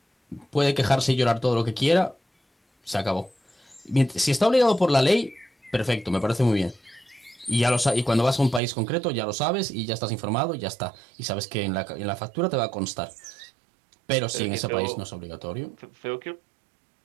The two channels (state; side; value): drops out; left; at 8.6 s